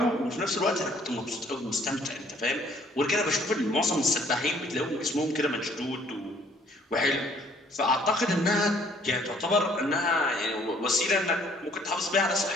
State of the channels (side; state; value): both; normal; correlation 0.61